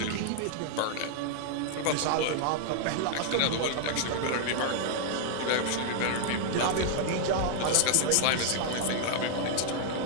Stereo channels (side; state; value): both; different; correlation 0.00